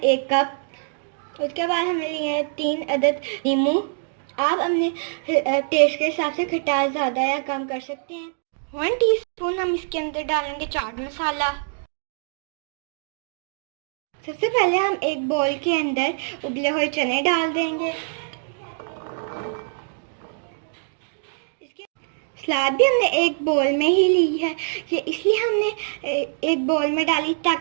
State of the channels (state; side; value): silent; left; digital silence